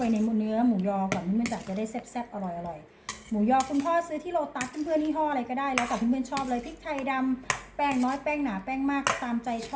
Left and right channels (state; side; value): identical; both; correlation 1.00